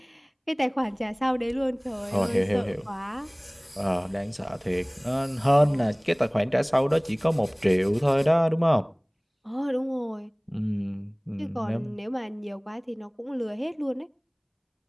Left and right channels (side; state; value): both; identical; correlation 1.00